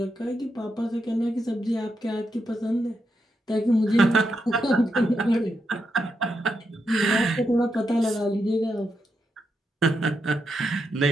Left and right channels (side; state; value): both; normal; correlation 0.84